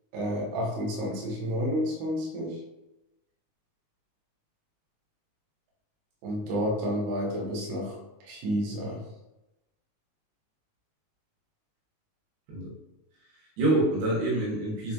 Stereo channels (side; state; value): left; late; 19 ms